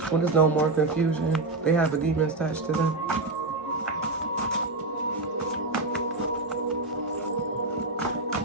When there's no more confusion, they have a demon attached to them.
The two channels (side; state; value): left; quieter; 3.2 dB